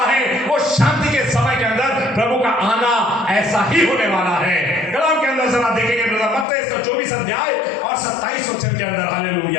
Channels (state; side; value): drops out; right; at 6.5 s